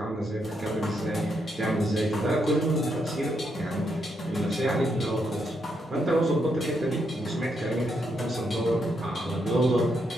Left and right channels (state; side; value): normal; both; correlation 0.79